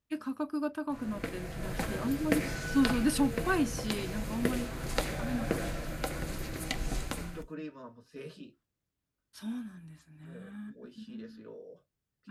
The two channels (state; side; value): identical; both; correlation 1.00